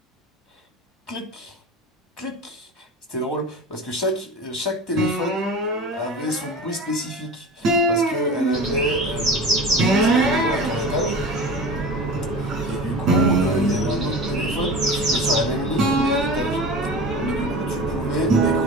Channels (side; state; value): both; normal; correlation 0.34